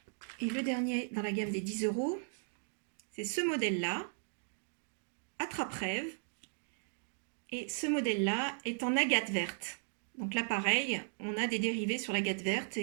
Et le dernier dans la gamme des 10 €, c'est ce modèle-là, attrape-rêve. Et ce modèle-là est en agate verte. Donc là, pareil, on a des dérivés sur l'agate verte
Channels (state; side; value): silent; left; digital silence